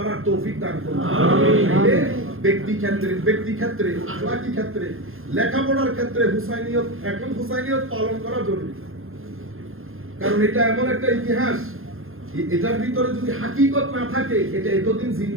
তৌফিক দান করুন। আমিন। ব্যক্তি ক্ষেত্রে, আখলাকি ক্ষেত্রে, লেখাপড়ার ক্ষেত্রে হুসাইনিয়ত, এখন হুসাইনিয়ত পালন করা জরুরি। কারণ এটা এমন একটা ইতিহাস, এটার ভিতরে যদি হাকিকত না থাকে এটা এতদিন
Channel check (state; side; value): late; left; 0.60 ms